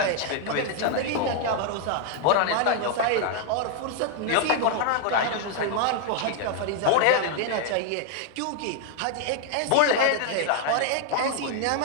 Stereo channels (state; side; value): different; both; correlation 0.00